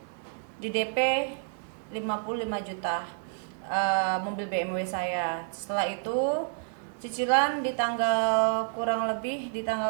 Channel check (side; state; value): left; silent; digital silence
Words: di DP 55 juta, mobil BMW saya. Setelah itu cicilan di tanggal kurang lebih di